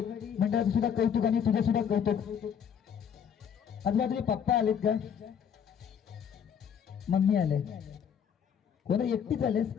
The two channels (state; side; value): quieter; right; 7.9 dB